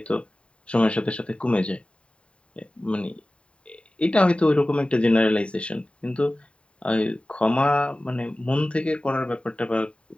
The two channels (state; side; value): late; right; 0.059 ms